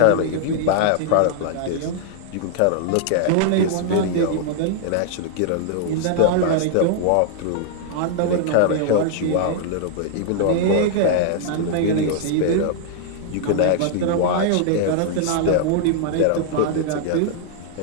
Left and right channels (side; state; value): both; different; correlation -0.01